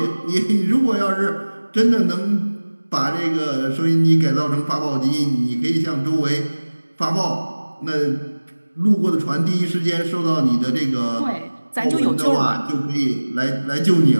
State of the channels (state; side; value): inverted; both; correlation -1.00